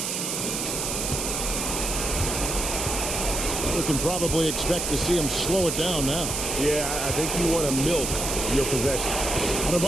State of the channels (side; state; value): right; noise; hiss, 2 dB below the sound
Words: You can probably expect to see him slow it down now. Yeah, I think you want to milk your possession.